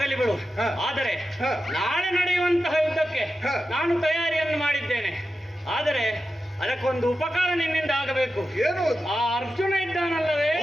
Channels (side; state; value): both; normal; correlation 0.91